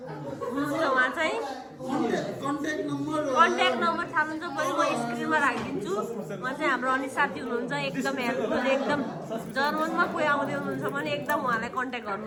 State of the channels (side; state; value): both; identical; correlation 1.00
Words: हुन्छ। उहाँ चाहिँ कन्ट्याक्ट नम्बर थाल्नुहुन्छ पनि म स्क्रिनमा राखिदिन्छु। उहाँ चाहिँ हाम्रो अनि साथी हुनुहुन्छ, एकदम हेल्पफुल, एकदम जर्मनमा कोही आउँदै हुनुहुन्छ भने एकदम उहाँलाई कन्ट्याक्ट